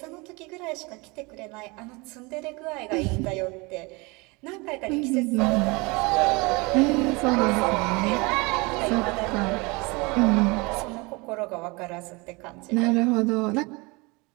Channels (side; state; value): left; quieter; 26.2 dB